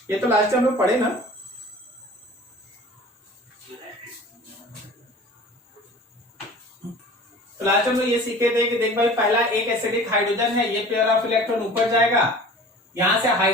ये तो लास्ट टाइम हम लोग पढ़े ना। तो लास्ट हम लोग ये सीखे थे कि देख भाई पहला एक एसिडिक हाइड्रोजन है, ये पेयर ऑफ इलेक्ट्रॉन ऊपर जाएगा, यहां से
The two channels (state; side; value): normal; both; correlation 0.42